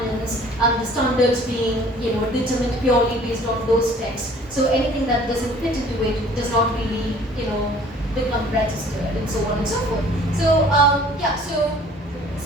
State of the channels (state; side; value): normal; both; correlation 0.52